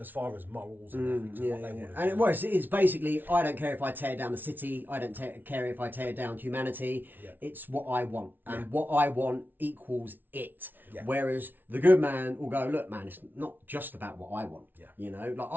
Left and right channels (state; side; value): late; left; 0.090 ms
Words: far as morals and ethics and what they want to And do. it's basically, I don't care if I tear down the city, I don't care if I tear down humanity, it's what I want, and what I want equals it. Whereas the good man will go, look man, it's not just about what I want. You know, like